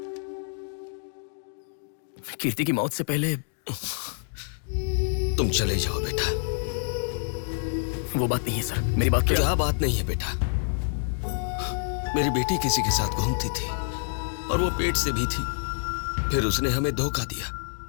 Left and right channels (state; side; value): silent; right; digital silence